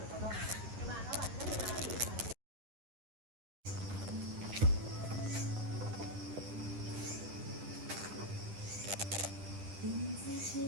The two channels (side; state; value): left; late; 9.9 ms